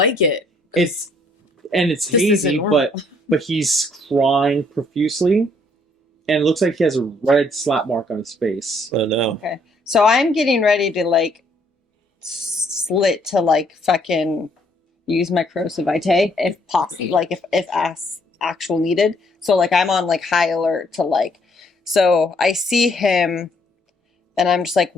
it. It's This isn't hazy, normal. but he's crying profusely, and it looks like he has a red slap mark on his face. Oh, no. Okay. So I'm getting ready to like slit to like fucking use my corrosive vitae if possible, like if actual needed. So like I'm on like high alert to like. So I see him, and I'm just like,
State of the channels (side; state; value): both; normal; correlation 0.66